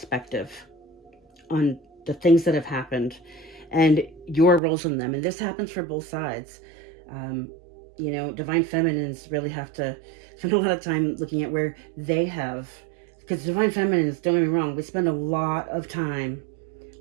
on the things that have happened and your roles in them. And this happens for both sides. Divine feminines really have to spend a lot of time looking at where they have, because divine feminines, don't get me wrong, we spend a lot of time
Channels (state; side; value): drops out; left; at 4.6 s